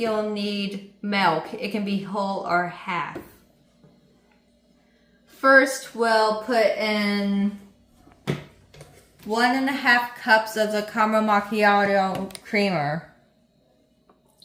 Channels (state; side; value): identical; both; correlation 1.00